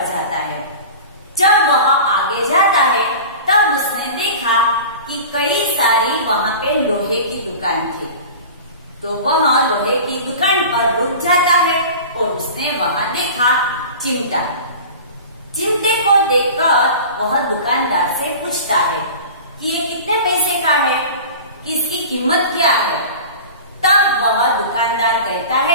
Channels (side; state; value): both; inverted; correlation -0.36